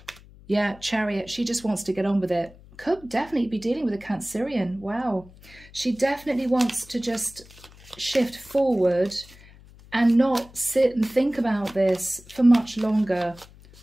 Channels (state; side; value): noise; left; hum, 23 dB below the sound